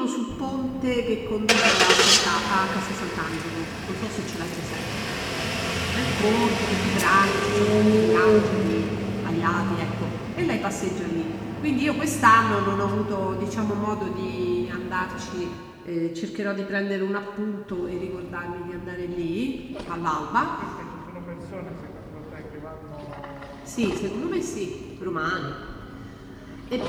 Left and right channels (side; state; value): both; identical; correlation 1.00